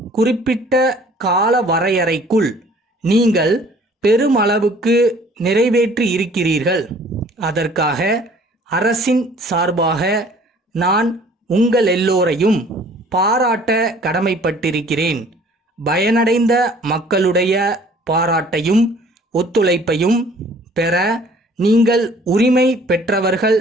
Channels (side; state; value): both; normal; correlation 0.54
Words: குறிப்பிட்ட கால வரையறைக்குள் நீங்கள் பெருமளவுக்கு நிறைவேற்றி இருக்கிறீர்கள். அதற்காக அரசின் சார்பாக நான் உங்கள் எல்லோரையும் பாராட்ட கடமைப்பட்டிருக்கிறேன். பயனடைந்த மக்களுடைய பாராட்டையும் ஒத்துழைப்பையும் பெற நீங்கள் உரிமை பெற்றவர்கள்